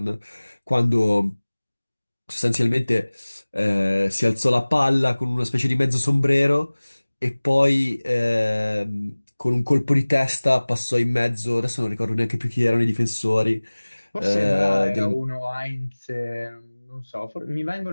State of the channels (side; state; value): both; inverted; correlation -1.00